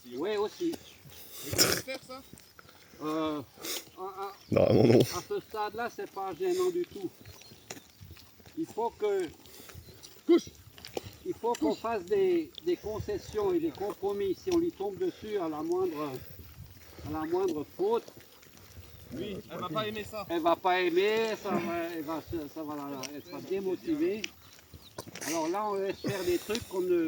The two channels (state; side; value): identical; both; correlation 1.00